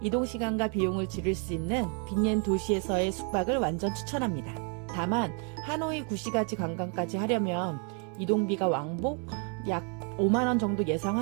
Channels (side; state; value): left; quieter; 39.1 dB